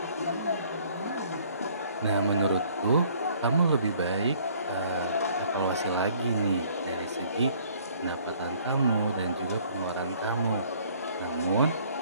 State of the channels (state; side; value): inverted; both; correlation -0.58